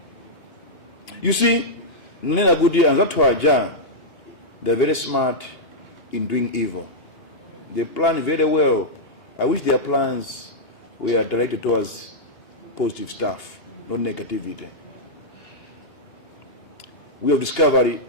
You see, Nina Gudi and Zatwaja, they're very smart in doing evil. They plan very well. I wish their plans were directed towards positive stuff, not negativity. We have discovered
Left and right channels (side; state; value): right; late; 2.8 ms